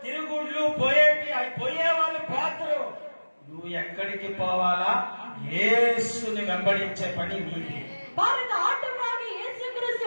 తిరుగుళ్ళు పోయేటి అవి పోయే వాళ్ళు పోతారు. నువ్వు ఎక్కడికి పోవాలా? యేసుని వెంబడించే పని నీది. பாருங்க, ஆண்டவராகிய இயேசு கிறிஸ்து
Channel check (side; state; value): both; inverted; correlation -1.00